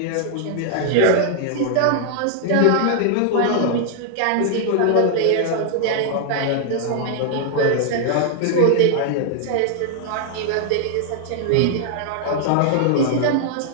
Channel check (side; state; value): both; different; correlation 0.00